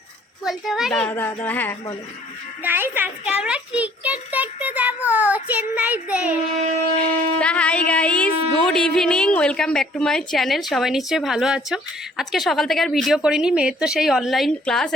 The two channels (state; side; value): normal; both; correlation 0.59